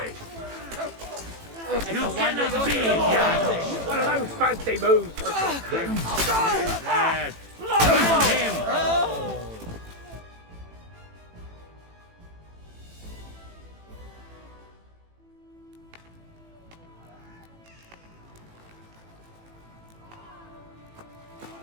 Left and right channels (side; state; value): left; late; 18 ms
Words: You cannot be here! One of those fancy moves for Lad, find him!